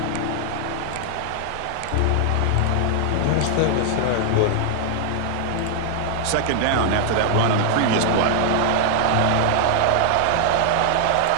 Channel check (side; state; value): both; different; correlation 0.00